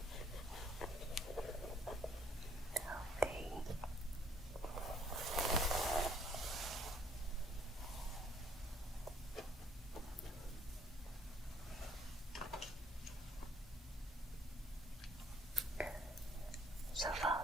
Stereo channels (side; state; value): both; normal; correlation 0.62